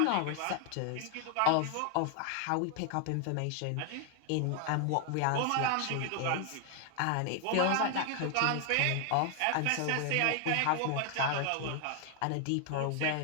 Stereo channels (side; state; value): both; different; correlation 0.00